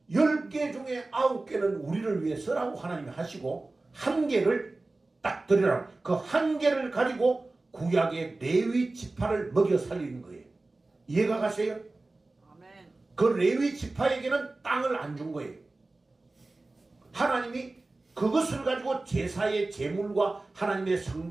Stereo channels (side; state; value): left; quieter; 3.2 dB